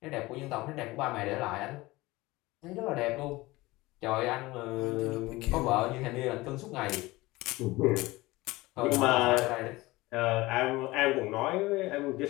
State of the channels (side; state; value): right; quieter; 20.3 dB